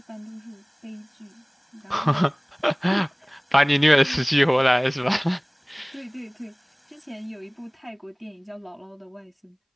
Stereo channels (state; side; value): identical; both; correlation 1.00